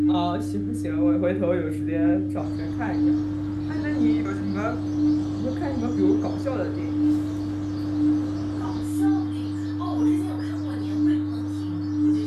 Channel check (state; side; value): identical; both; correlation 1.00